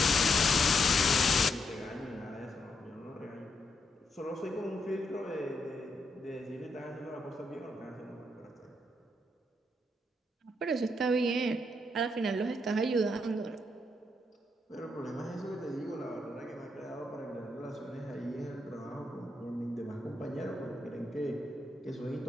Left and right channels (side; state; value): both; normal; correlation 0.79